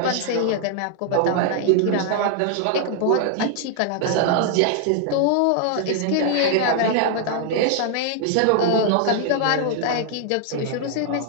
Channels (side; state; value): both; different; correlation 0.00